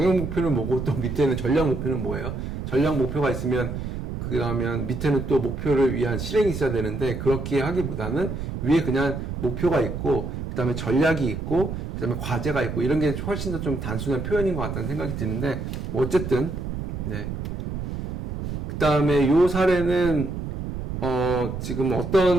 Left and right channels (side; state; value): right; noise; rumble, 5 dB below the sound